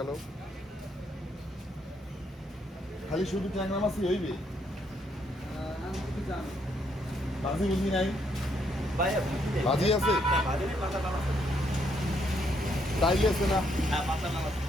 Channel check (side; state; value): both; normal; correlation 0.73